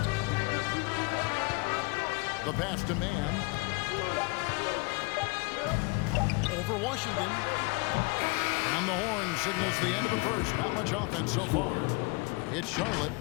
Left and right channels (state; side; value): quieter; right; 28.5 dB